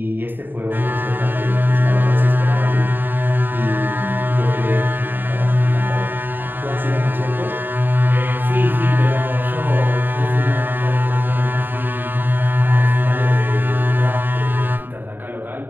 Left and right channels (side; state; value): left; late; 0.093 ms